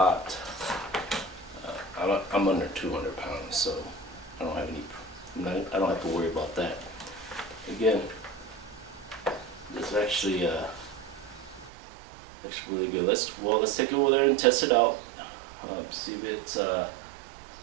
I'm under 200 pounds, so I don't have to worry about that. Again, this is actually really good. Let's take it over there and test it out. See if it's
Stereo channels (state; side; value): drops out; left; at 11.7 s